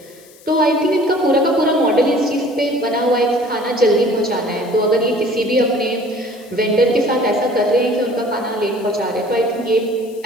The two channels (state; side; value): noise; left; hiss, 25 dB below the sound